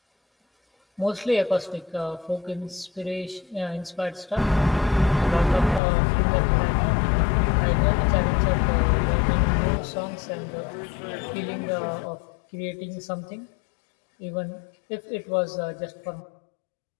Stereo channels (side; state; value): right; drops out; at 5.8 s